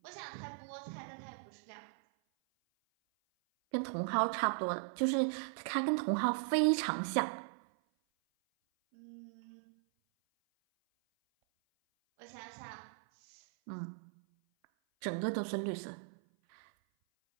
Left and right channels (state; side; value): silent; left; 53 dB below the other